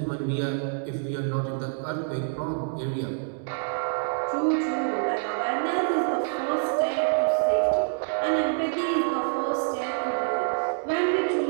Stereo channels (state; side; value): silent; left; digital silence